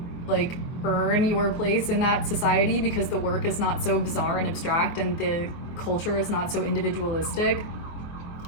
like earn your place in that society, because the work is not so bizarre and abstract and the culture is not so individualistic.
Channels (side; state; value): right; late; 24 ms